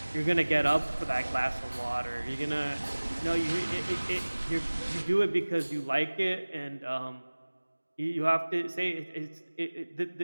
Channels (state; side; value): inverted; both; correlation -1.00